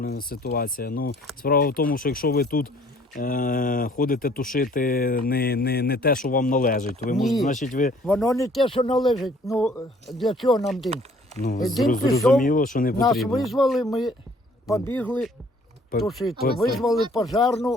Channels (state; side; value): normal; both; correlation 0.58